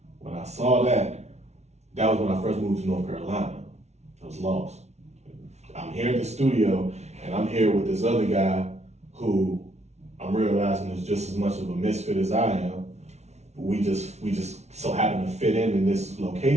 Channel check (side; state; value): left; late; 0.32 ms